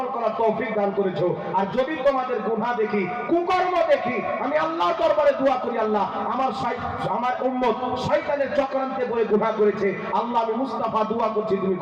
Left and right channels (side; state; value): both; identical; correlation 1.00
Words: করার তৌফিক দান করেছো। আর যদি তোমাদের গুনাহ দেখি, কুকর্ম দেখি, আমি আল্লাহর দরবারে দোয়া করি, আল্লাহ আমার উম্মত শয়তানের চক্রান্তে পড়ে গুনাহ করেছে, আল্লাহ আমি মুস্তাফা দোয়া করছি তুমি